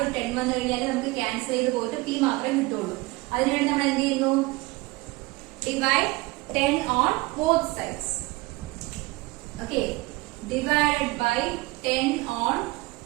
ഒരു 10 വന്നു കഴിഞ്ഞാൽ നമുക്ക് ക്യാൻസൽ ചെയ്ത് പോയിട്ട് p മാത്രമേ കിട്ടുള്ളൂ. അതിനുവേണ്ടി നമ്മൾ എന്ത് ചെയ്യുന്നു, divide 10 on both sides. Okay, divided by 10 on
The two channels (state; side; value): quieter; left; 22.4 dB